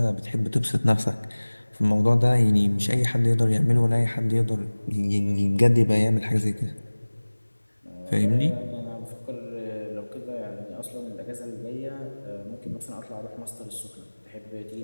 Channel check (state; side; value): inverted; both; correlation -1.00